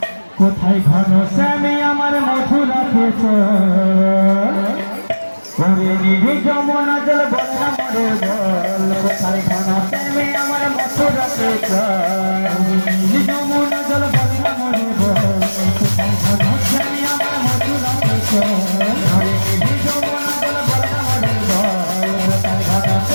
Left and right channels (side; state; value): both; inverted; correlation -1.00